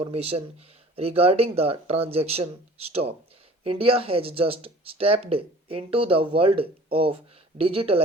regarding the transaction stop. India has just stepped into the world of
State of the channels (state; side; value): normal; both; correlation 0.47